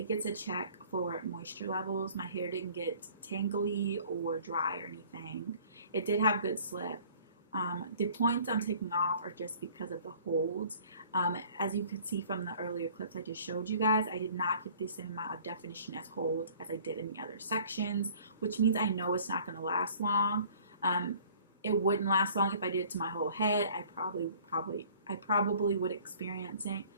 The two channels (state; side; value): inverted; both; correlation -0.52